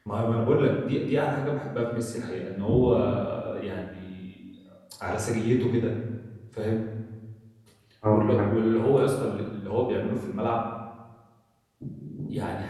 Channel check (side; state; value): both; identical; correlation 1.00